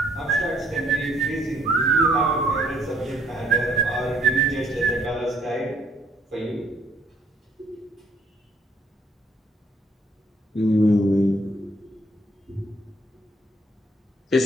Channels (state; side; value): normal; both; correlation 0.65